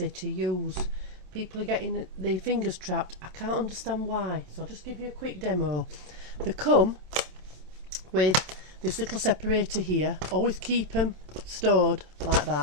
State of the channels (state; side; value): late; left; 27 ms